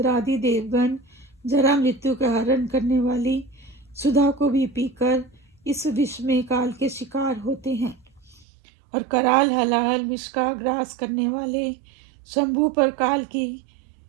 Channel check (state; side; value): drops out; left; at 8.5 s